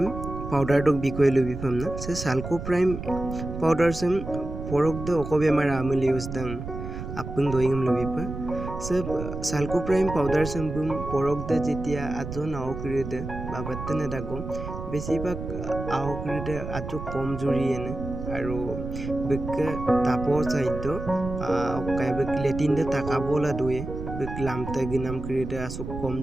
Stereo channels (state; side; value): noise; right; rumble, 8 dB below the sound